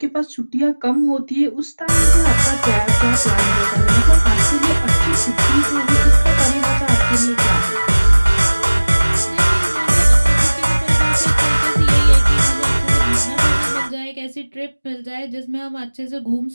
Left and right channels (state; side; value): inverted; both; correlation -1.00